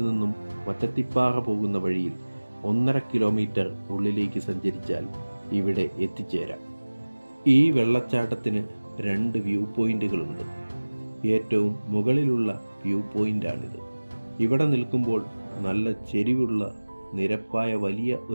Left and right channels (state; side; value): inverted; both; correlation -1.00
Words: നിന്നും മറ്റത്തിപ്പാറ പോകുന്ന വഴിയിൽ 1.5 കിലോമീറ്റർ ഉള്ളിലേക്ക് സഞ്ചരിച്ചാൽ ഇവിടെ എത്തിച്ചേരാം. ഈ വെള്ളച്ചാട്ടത്തിന് 2 വ്യൂ പോയിന്റുകളുണ്ട്. ഏറ്റവും മുകളിലുള്ള വ്യൂ പോയിന്റാണിത്. ഇവിടെ നിൽക്കുമ്പോൾ നല്ല ചെരിവുള്ള നിരപ്പായ വലിയ